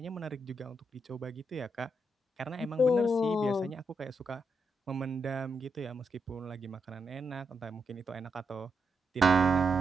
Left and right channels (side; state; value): both; normal; correlation 0.82